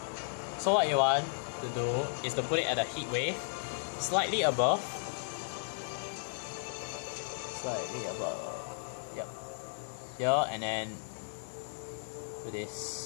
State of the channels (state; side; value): silent; right; digital silence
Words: So what you want to do is to put it at a heat wave slightly above. Yep. Here, and then do